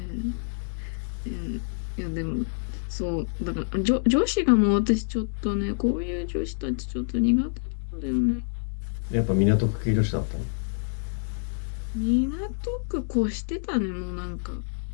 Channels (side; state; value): right; silent; digital silence